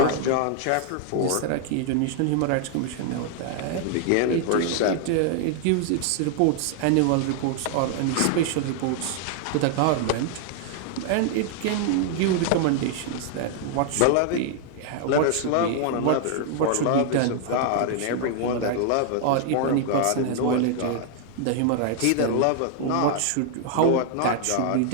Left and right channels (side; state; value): both; different; correlation 0.00